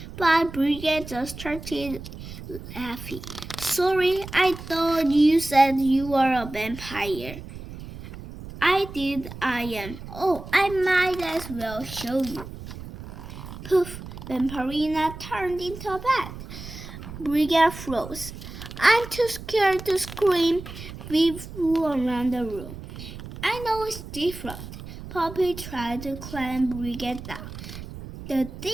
but Brigette just started laughing. Sorry, I thought you said you were a vampire. I did, I am. Oh, I might as well show you. Poof, Vampirina turned into a bat. Brigette froze. I'm too scared to scream. We flew around the room. I know it's different. Poppy tried to climb Brigette down. The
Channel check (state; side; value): noise; right; rumble, 12 dB below the sound